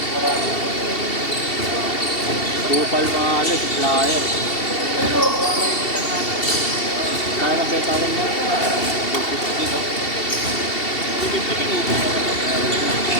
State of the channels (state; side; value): late; right; 2.7 ms